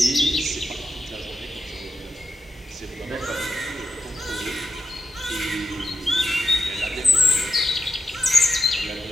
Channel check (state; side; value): normal; both; correlation 0.87